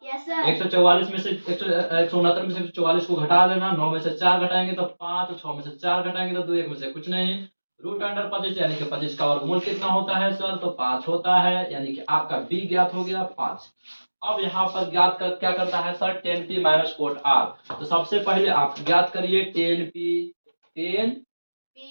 yes, 144 में से 169 में से 144 को घटा देना, 9 में से 4 घटाएंगे तो 5, 6 में से 4 घटाएंगे तो 2, 1 में से कुछ नहीं। रूट अंडर 25 यानी कि 25 का वर्गमूल कितना होता है सर, तो 5 होता है, यानी कि आपका बी ज्ञात हो गया 5। अब यहाँ पर ज्ञात कर क्या करना है sir, tan P minus cot R. तो सबसे पहले आप ज्ञात करिए टेन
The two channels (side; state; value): both; inverted; correlation -1.00